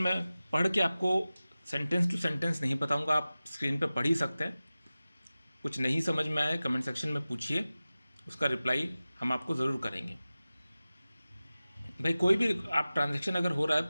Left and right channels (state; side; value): inverted; both; correlation -0.97